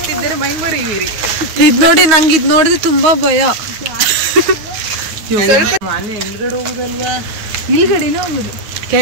ಮೈಮರಿಯುವಿರಿ ಇದ್ ನೋಡಿ ನಂಗೆ ಇದ್ ನೋಡಿದ್ರೆ ತುಂಬಾ ಭಯ ಸ್ವಲ್ಪ ಮನೆ ಹಿಂದ್ಗಡೆ ಹೋಗುದಲ್ವಾ ಇಲ್ಗಡೆನೇ ಹೋಗುದು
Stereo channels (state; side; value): late; left; 9.4 ms